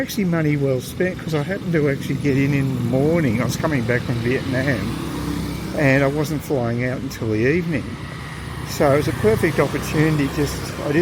money well spent, because I happened to actually get in the morning. I was coming back from Vietnam and I wasn't flying out until the evening, so it was a perfect opportunity. I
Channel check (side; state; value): both; identical; correlation 1.00